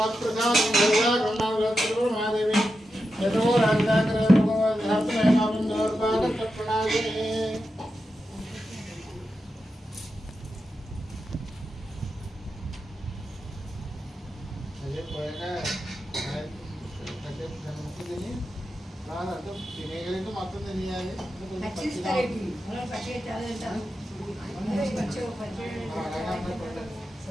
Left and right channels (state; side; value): normal; both; correlation 0.89